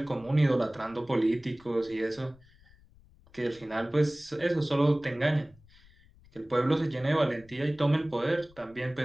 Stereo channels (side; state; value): left; noise; rumble, 27 dB below the sound